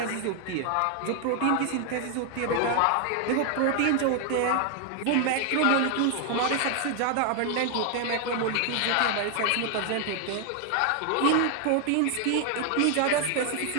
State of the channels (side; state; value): both; different; correlation 0.00